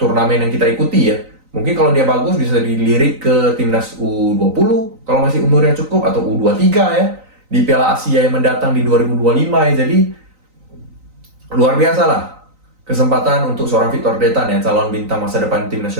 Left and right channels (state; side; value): late; left; 3.9 ms